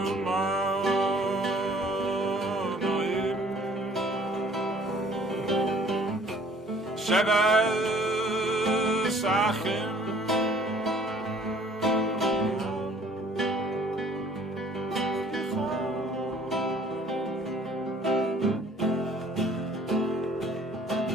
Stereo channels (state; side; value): normal; both; correlation 0.55